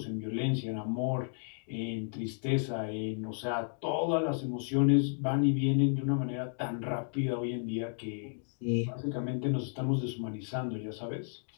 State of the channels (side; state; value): right; silent; digital silence